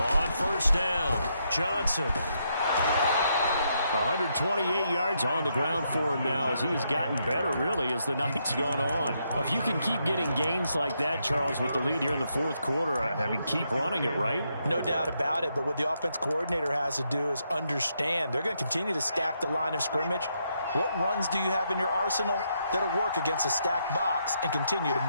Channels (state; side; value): inverted; both; correlation -0.78